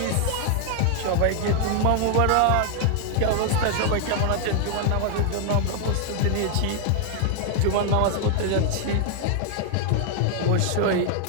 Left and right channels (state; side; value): different; both; correlation 0.00